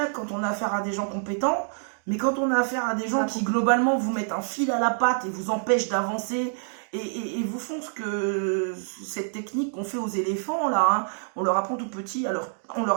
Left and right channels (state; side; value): silent; left; digital silence